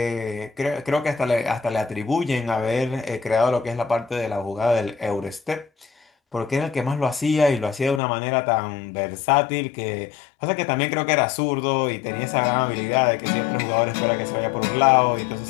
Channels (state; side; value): drops out; right; at 8.0 s